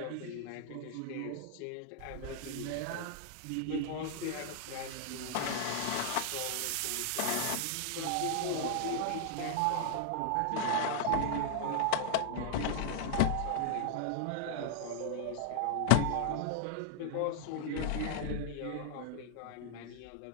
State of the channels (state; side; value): different; both; correlation 0.00